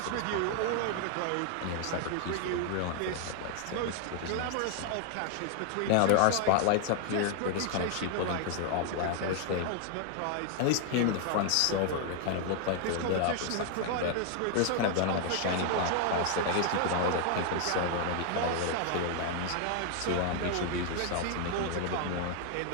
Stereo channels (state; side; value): different; both; correlation 0.00